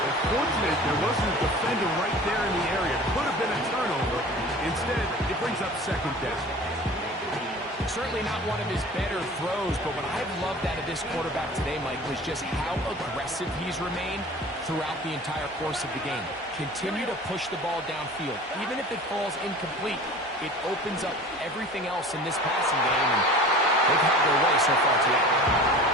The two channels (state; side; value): normal; both; correlation 0.41